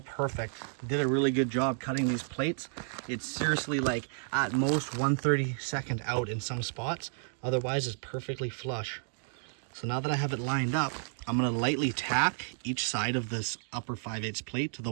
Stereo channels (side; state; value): left; silent; digital silence